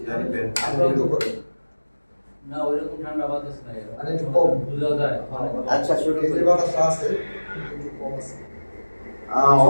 আমরা তো করি। না ওইরকম ঠান্ডা বাতাস নাই। আরে একটু কম বুঝা যায়। আচ্ছা শুরু এই করি। যে বাতাস আছে একটু কম আছে।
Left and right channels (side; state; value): both; inverted; correlation -1.00